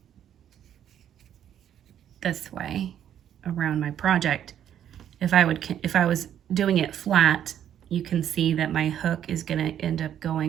this way around my project. If I was doing it flat, you can see that my hook is going to end up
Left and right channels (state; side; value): quieter; left; 10.1 dB